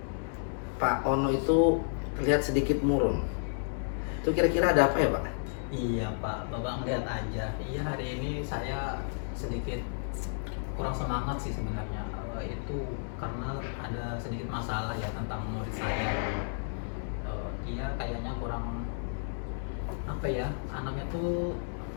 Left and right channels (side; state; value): right; silent; digital silence